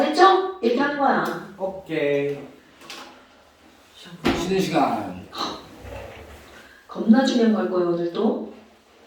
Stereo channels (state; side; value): identical; both; correlation 1.00